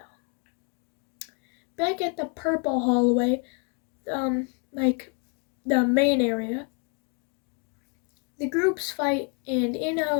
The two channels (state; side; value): quieter; right; 36.3 dB